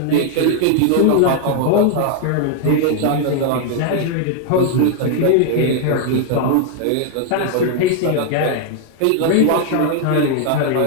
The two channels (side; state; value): both; different; correlation 0.00